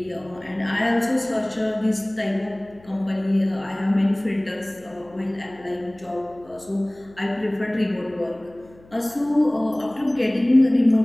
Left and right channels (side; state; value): left; noise; hum, 25 dB below the sound